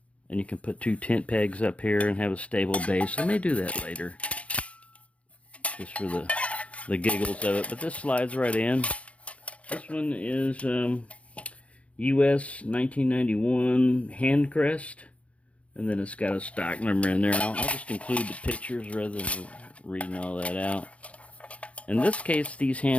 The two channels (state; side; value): late; right; 0.063 ms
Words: and you can put 2 tent pegs up here and have a stable base. I may do that later, just for the giggles of it. But this slides right in. This one is US 1991 hand crest, and then it's got a stock number in there. I'll just include the pictures rather than reading all that out. In this case, these